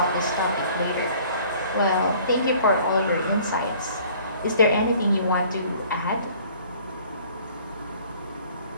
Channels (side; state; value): both; inverted; correlation -0.53